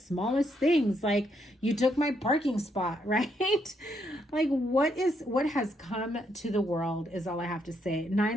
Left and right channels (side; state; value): both; normal; correlation 0.75